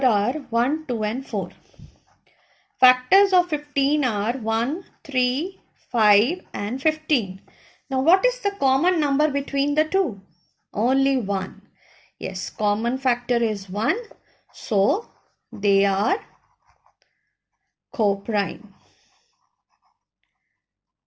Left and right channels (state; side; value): identical; both; correlation 1.00